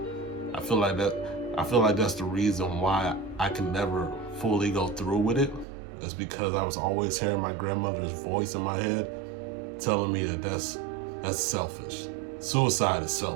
I feel like that's the reason why I can never fully go through with it. It's because I was always hearing my grandmother's voice in my head telling me that that's selfish. Suicide is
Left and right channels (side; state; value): left; drops out; at 5.7 s